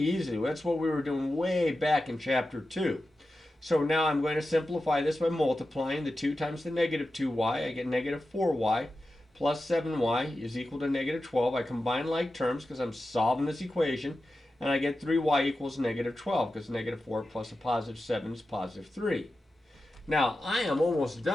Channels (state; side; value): normal; both; correlation 0.92